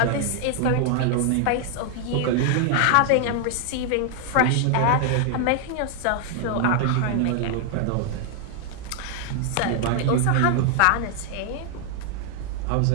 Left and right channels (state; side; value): different; both; correlation 0.00